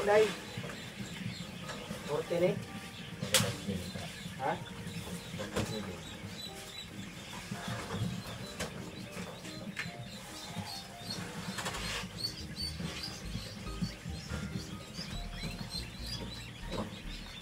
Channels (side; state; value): both; identical; correlation 1.00